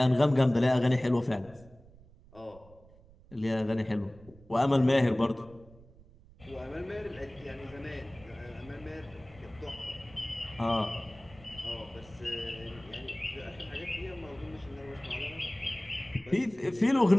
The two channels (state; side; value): noise; right; rumble, 23 dB below the sound